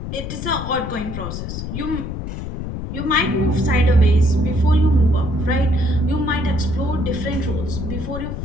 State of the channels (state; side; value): noise; left; rumble, 6 dB below the sound